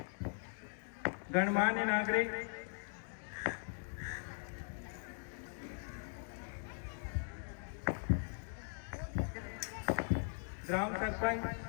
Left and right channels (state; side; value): silent; right; 51 dB below the other